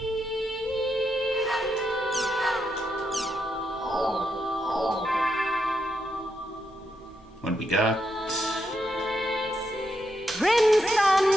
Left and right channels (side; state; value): both; normal; correlation 0.82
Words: What do we got? Crimson